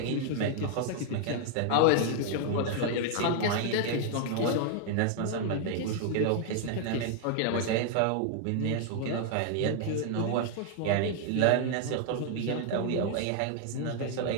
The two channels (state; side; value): different; both; correlation 0.00